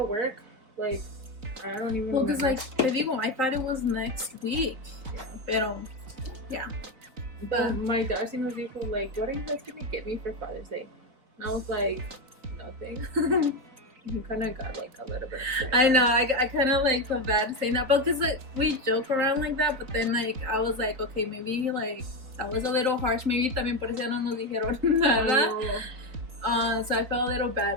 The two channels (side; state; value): left; late; 3.8 ms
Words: work, like, I don't even because like, te digo, I thought it was next week. Yeah. Pero, yeah. But my dad sí nos dijo, like, what are you guys gonna get me for Father's Day? And I was like, nothing. You kind of got like a little bit upset. I know, I kind of like feel bad saying that, but because like, we joke around like that, but then like I was like, okay, maybe like that was a little harsh. Maybe también por eso no nos dijeron nada. So I felt a little